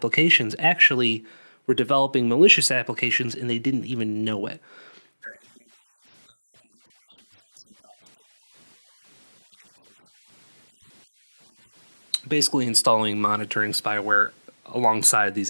actually were developing malicious applications, and they didn't even know it. Right, and I believe that information was then sent off to a remote command and control server, if I remember correctly. Basically installing monitoring spyware alongside these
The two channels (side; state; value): both; inverted; correlation -1.00